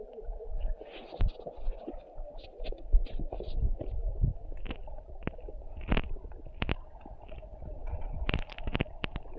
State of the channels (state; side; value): identical; both; correlation 1.00